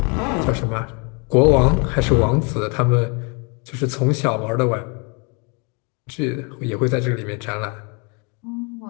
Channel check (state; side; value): quieter; right; 33.2 dB